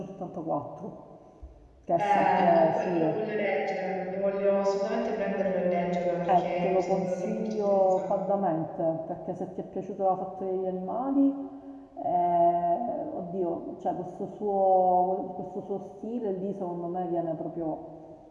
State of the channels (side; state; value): both; identical; correlation 1.00